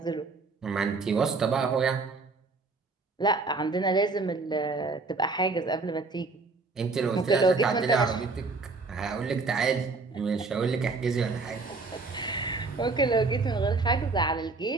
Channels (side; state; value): left; quieter; 3.9 dB